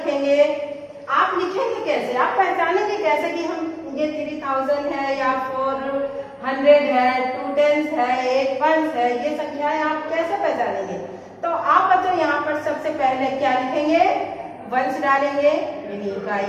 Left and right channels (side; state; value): both; identical; correlation 1.00